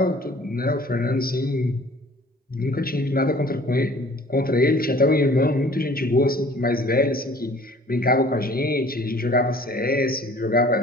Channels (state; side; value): normal; both; correlation 0.51